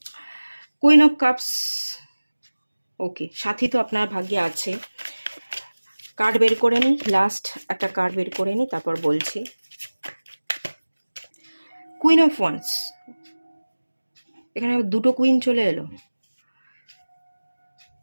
কুইন অফ কাপস, ওকে, সাথী তো আপনার ভাগ্যে আছে। কার্ড বের করে নিই, লাস্ট একটা কার্ড বের করে নিই, তারপর বলছি। কুইন অফ ওয়ান্স, এখানে আবার দুটো কুইন চলে এলো,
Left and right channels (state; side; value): inverted; both; correlation -1.00